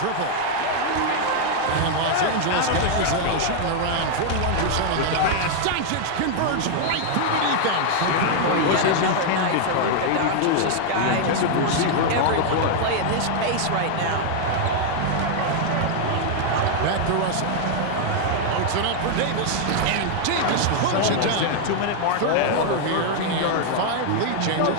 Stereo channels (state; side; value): different; both; correlation 0.00